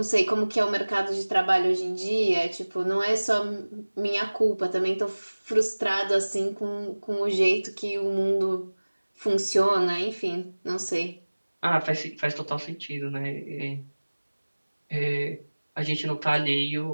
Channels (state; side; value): inverted; both; correlation -1.00